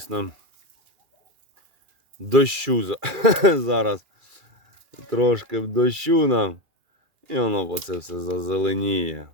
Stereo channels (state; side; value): late; left; 2.4 ms